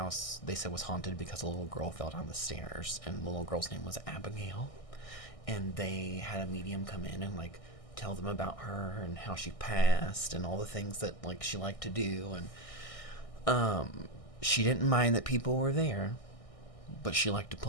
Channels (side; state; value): right; late; 1.6 ms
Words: they said was haunted because a little girl fell down the stairs, and the little girl's name was Abigail. And they had a medium come in and like tell them about her and how she passed and all the things that like she liked to do. And she didn't mind that people were there, but she liked to